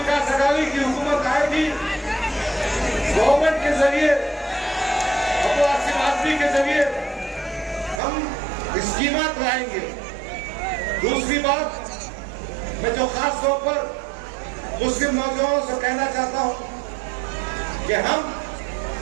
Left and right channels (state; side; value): drops out; left; at 8.0 s